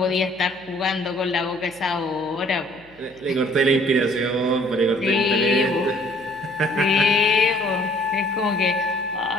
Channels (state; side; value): noise; left; hum, 29 dB below the sound